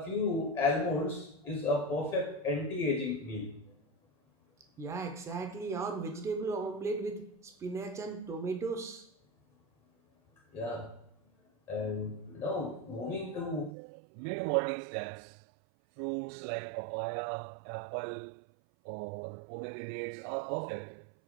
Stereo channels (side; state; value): left; drops out; at 13.8 s